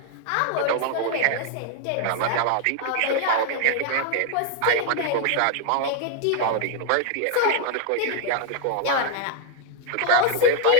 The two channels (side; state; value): both; different; correlation 0.00